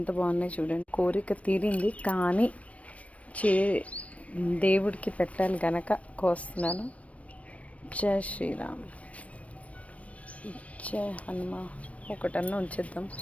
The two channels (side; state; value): right; late; 0.065 ms